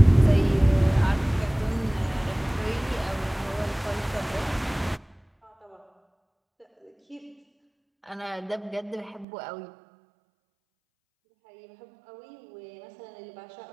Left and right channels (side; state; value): left; drops out; at 9.2 s